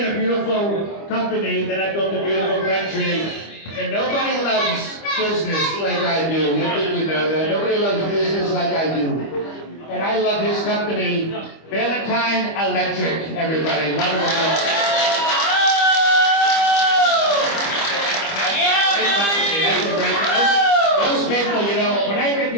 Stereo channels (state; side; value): late; right; 25 ms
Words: a beautiful company, then I built a beautiful country. And nobody loves business like I do. I think you know that. Nobody loves business like I do. And I love his company, Valentine Electric, everybody. Wonderful. Those people, you know, when I get